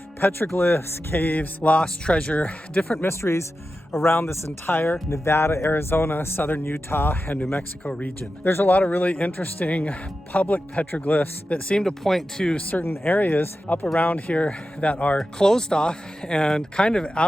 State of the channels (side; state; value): both; normal; correlation 0.92